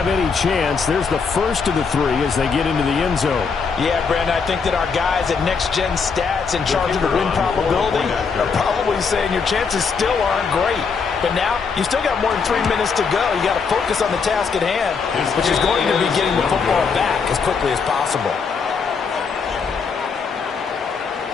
any chance. There's the first of the 3 as they get into the end zone. Yeah, Brandon, I think that our guys at Next Gen Stats in charge of the win probability are probably saying your chances still aren't great. But now, you still got more than 3 minutes to go. You got to focus on the task at hand, which is going to be getting the football back as quickly as possible.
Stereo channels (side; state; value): right; quieter; 5.5 dB